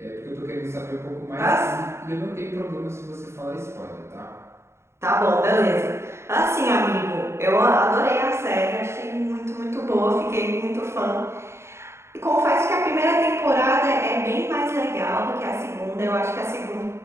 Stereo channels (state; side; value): late; left; 0.13 ms